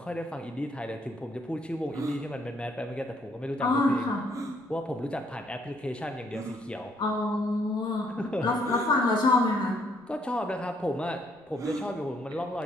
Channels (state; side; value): normal; both; correlation 0.69